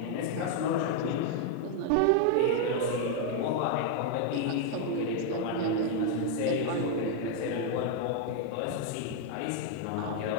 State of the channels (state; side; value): different; both; correlation 0.00